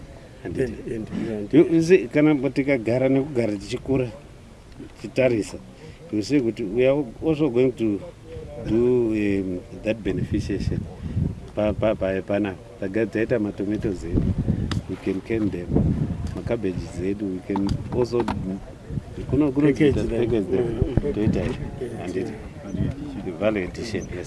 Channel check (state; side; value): identical; both; correlation 1.00